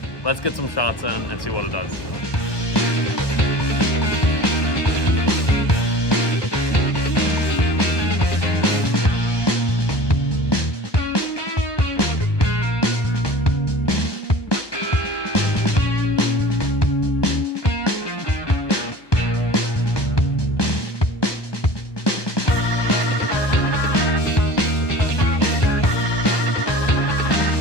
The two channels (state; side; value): late; right; 1.2 ms